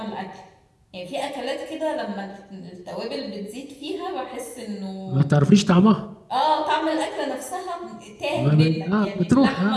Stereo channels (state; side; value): identical; both; correlation 1.00